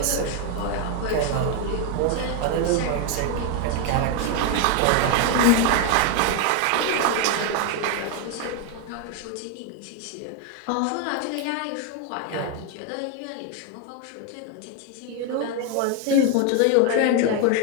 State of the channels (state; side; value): different; both; correlation 0.01